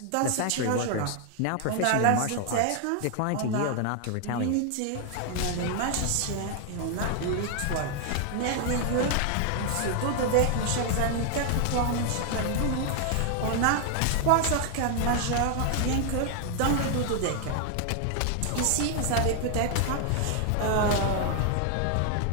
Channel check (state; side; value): different; both; correlation 0.00